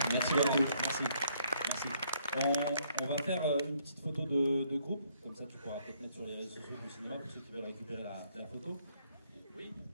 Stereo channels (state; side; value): inverted; both; correlation -0.68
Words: merci beaucoup. Merci. Merci. On va faire une petite photo de groupe, comme ça tu pourras peut-être mettre sur les réseaux sociaux du cinéma pour ceux qui veulent récupérer la photo. Oui.